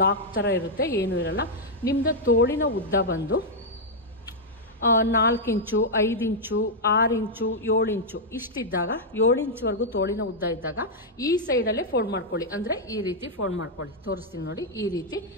ಲಾಕ್ ಥರ ಇರುತ್ತೆ, ಏನೂ ಇರಲ್ಲ. ನಿಮ್ಮದು ತೋಳಿನ ಉದ್ದ ಬಂದು 4 ಇಂಚು 5 ಇಂಚು 6 ಇಂಚು 7 ಇಂಚು ಇಷ್ಟಿದ್ದಾಗ 7 ಇಂಚ್ವರೆಗೂ ತೋಳಿನ ಉದ್ದ ಇದ್ದಾಗ ಈ ಸೈಡಲ್ಲೇ ಫೋಲ್ಡ್ ಮಾಡ್ಕೊಳ್ಳಿ. ಅಂದರೆ ಈ ರೀತಿ ಫೋಲ್ಡ್ ಮಾಡ್ಕೊಳ್ಳಿ, ತೋರಿಸ್ತೀನಿ ನೋಡಿ. ಈ ರೀತಿ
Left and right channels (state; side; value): normal; both; correlation -0.04